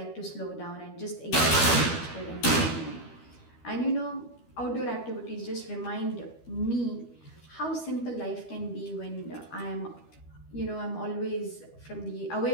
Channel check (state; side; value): late; right; 13 ms